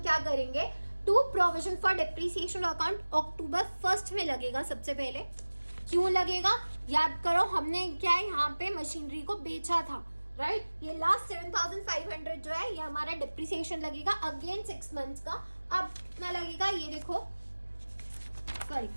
क्या करेंगे? To provision for depreciation account October 1 में लगेगा। सबसे पहले क्यों लगेगा? याद करो, हमने क्या है यहाँ पे मशीनरी को बेचा था, राइट। ये लास्ट 7,500 जो है ये हमारा डिप्रिसिएशन लगेगा अगेन 6 मंथ्स का। अब कितना लगेगा ये देखो, सॉरी,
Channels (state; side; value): inverted; both; correlation -1.00